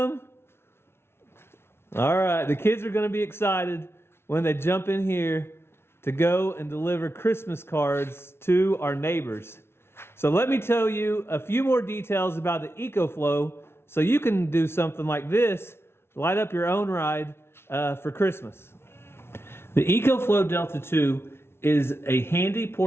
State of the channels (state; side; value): late; right; 0.12 ms